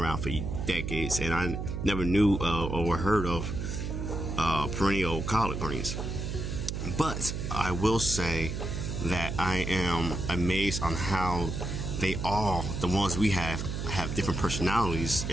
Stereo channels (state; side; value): noise; right; hum, 4 dB below the sound